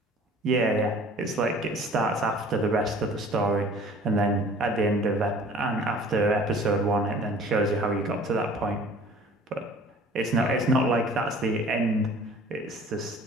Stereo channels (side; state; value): both; normal; correlation 0.49